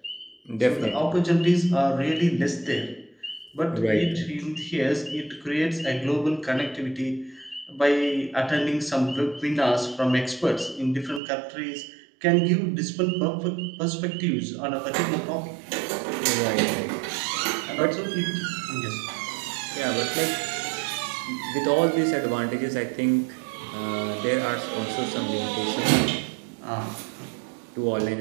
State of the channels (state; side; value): drops out; left; at 11.2 s